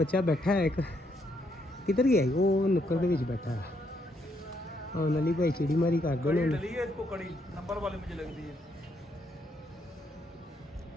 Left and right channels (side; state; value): both; normal; correlation 0.74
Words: ਬੈਠਾ ਹੈ ਇੱਕ। किधर गया वो नुक्कड़ के बीच बैठा है। हाँ नली भाई चिड़ी मारी कर दो इसको कड़ी नंबर वाले मुझे लगती है